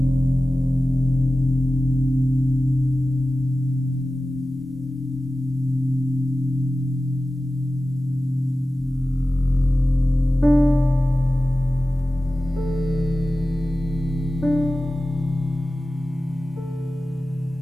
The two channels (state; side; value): normal; both; correlation 0.95